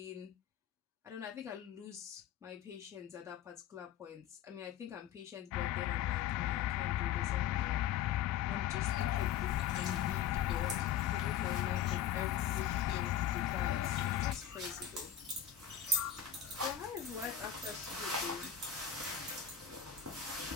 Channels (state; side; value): quieter; right; 9.4 dB